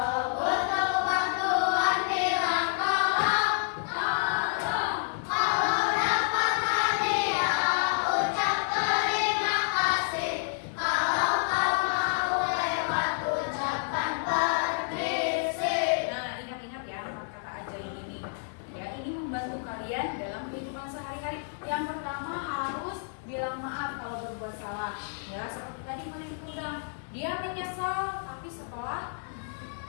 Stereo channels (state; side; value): silent; right; digital silence